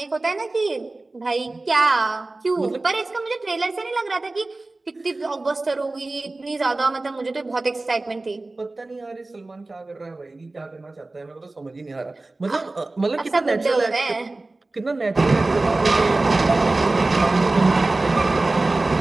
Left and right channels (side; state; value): left; quieter; 3.1 dB